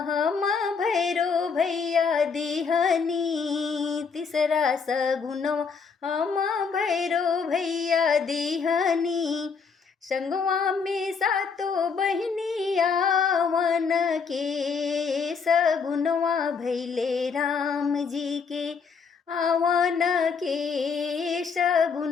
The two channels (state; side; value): quieter; right; 5.6 dB